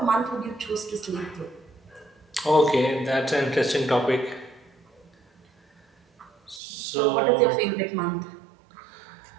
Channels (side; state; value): left; drops out; at 6.6 s